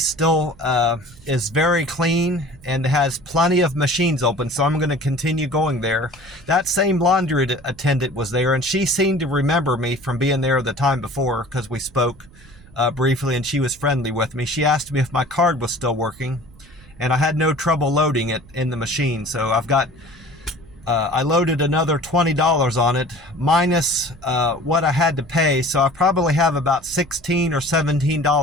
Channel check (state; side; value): noise; right; rumble, 24 dB below the sound